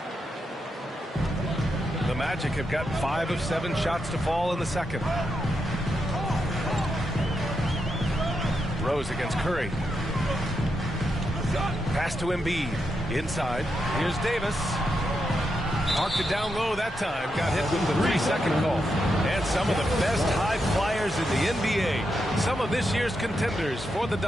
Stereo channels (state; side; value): normal; both; correlation 0.84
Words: The Magic have got 5 of 7 shots to fall in the second. Rose against Curry. Pass to Embiid. Inside. Here's Davis. Marked it down low that time. Got hit with the 3-second call. And some of the best high flyers in the NBA. Some of this year's contenders for the